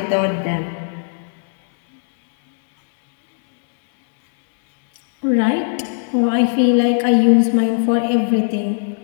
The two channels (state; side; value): silent; right; digital silence